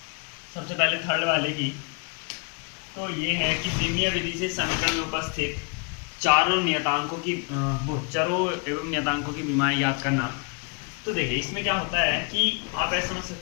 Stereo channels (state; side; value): quieter; right; 35.4 dB